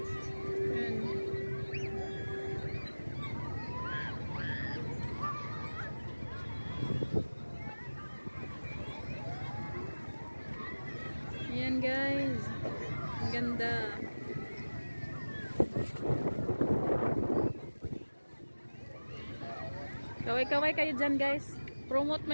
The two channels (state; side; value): inverted; both; correlation -1.00